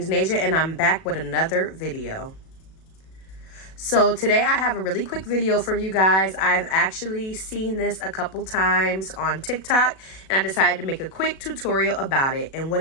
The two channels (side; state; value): right; late; 37 ms